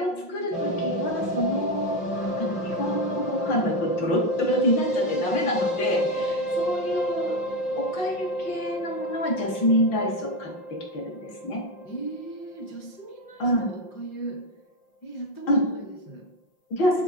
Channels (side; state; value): right; late; 5.7 ms